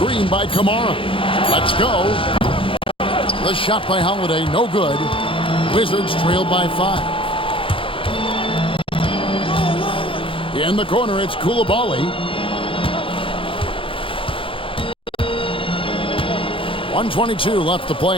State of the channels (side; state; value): right; late; 0.25 ms